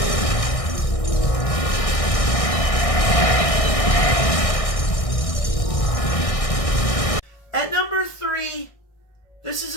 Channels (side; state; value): right; late; 1.6 ms